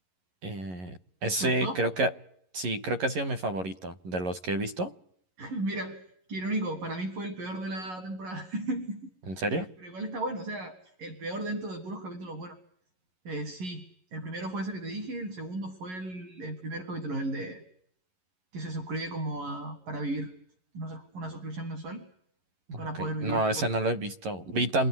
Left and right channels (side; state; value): left; late; 11 ms